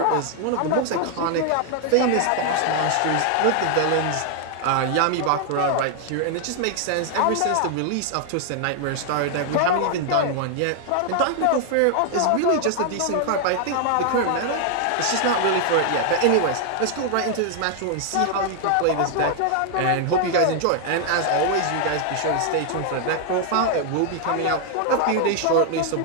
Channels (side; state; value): both; different; correlation 0.00